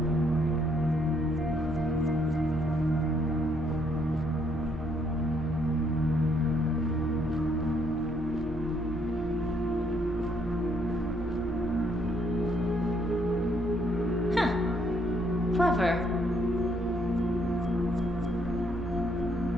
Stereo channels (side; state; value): both; normal; correlation 0.70